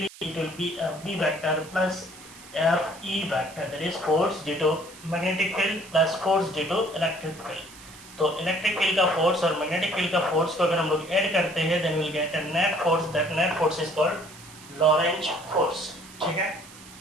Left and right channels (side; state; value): right; noise; hiss, 19 dB below the sound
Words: it will be Fb vector plus Fe vector, that is force due to magnetic field plus force due to electric field. तो electric field का force और magnetic field का force को अगर हम लोग add करते हैं then will get a net force, that net force is called Lorentz force. ठीक है.